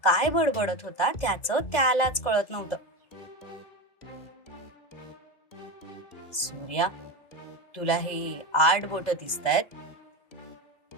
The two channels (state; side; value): late; right; 2.1 ms